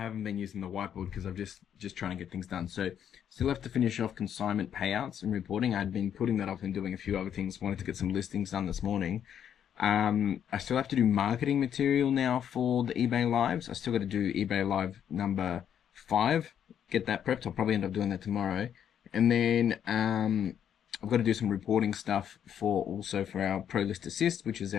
been using the whiteboard because I'm just trying to get things done. So still have to finish off consignment payouts and reporting. I'd been putting that off and doing a few other things. Wanted to get some listings done this morning. I still have to do marketing material now for the eBay Lives. I still got to do eBay Live number 5. Get that prepped. I'll probably end up doing that tomorrow. And then I've got to do some reporting stuff for our Pro List Assist, which is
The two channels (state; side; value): quieter; right; 9.1 dB